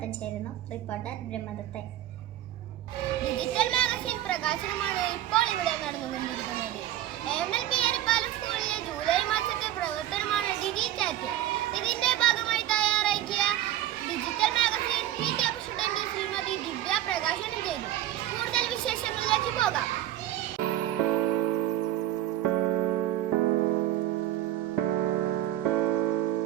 ചേരുന്നു റിപ്പോർട്ടർ ബ്രഹ്മദത്തൻ. ഡിജിറ്റൽ മാഗസിൻ പ്രകാശനമാണ് ഇപ്പോൾ ഇവിടെ നടന്നുകൊണ്ടിരിക്കുന്നത്. AMLP എരിപ്പാലം സ്കൂളിലെ ജൂലൈ മാസത്തെ പ്രവർത്തനമാണ് ഡിജിചാറ്റ്. ഇതിന്റെ ഭാഗമായി തയ്യാറാക്കിയ digital magazine PT president Shrimati Divya പ്രകാശനം ചെയ്തു. കൂടുതൽ വിശേഷങ്ങളിലേക്ക് പോകാം.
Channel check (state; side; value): quieter; left; 13.2 dB